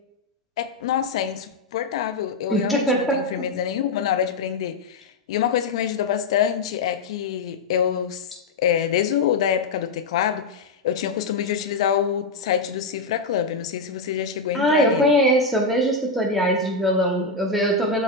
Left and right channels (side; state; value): right; quieter; 3.5 dB